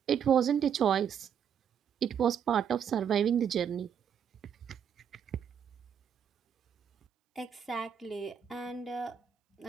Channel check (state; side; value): quieter; left; 8.1 dB